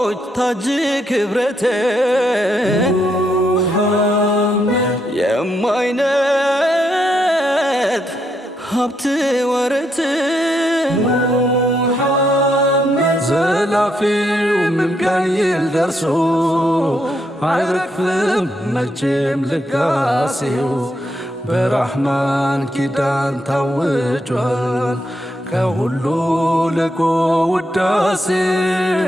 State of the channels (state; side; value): normal; both; correlation 0.78